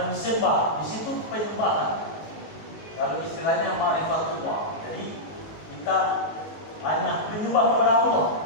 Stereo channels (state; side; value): late; right; 19 ms